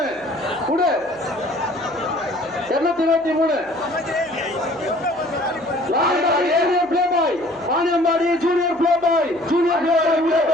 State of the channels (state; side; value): noise; right; hum, 28 dB below the sound